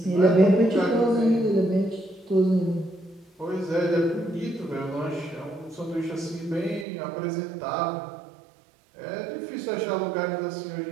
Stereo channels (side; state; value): left; drops out; at 6.9 s